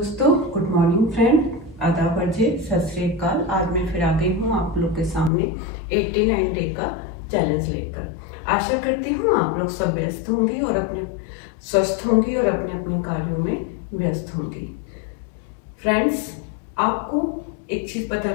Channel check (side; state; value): right; drops out; at 5.3 s